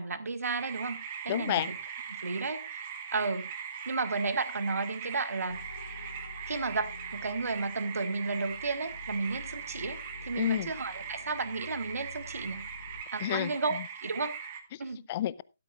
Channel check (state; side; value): inverted; both; correlation -0.60